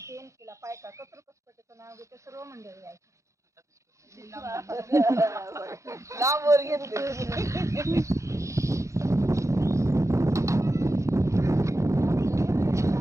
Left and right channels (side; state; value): left; late; 0.15 ms